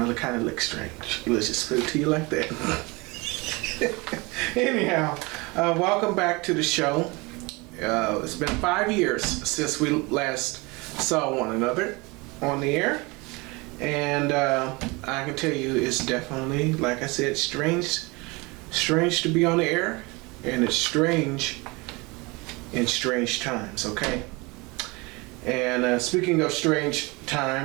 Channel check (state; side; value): quieter; left; 25.8 dB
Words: kind of look strange. Let's just put it to you like that. Anyhow, welcome back to the show. It's been 5 years since we last saw one another on the air. And I can tell you it's definitely, like I said, strange to be on the air. And it's strange in strange times, okay? And speaking of strange